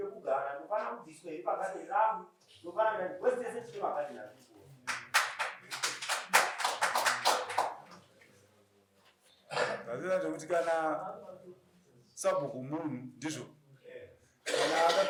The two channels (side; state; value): both; identical; correlation 1.00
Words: ndofana kubviswa here pagadheni rangu ndofana wese tine magadheni aripo zazira zvekuti kana sabhuku munhu ndizvo kana